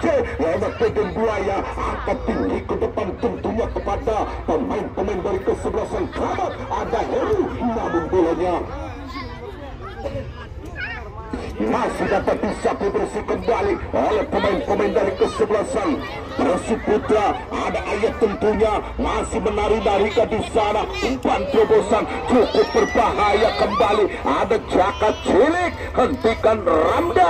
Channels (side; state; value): both; identical; correlation 1.00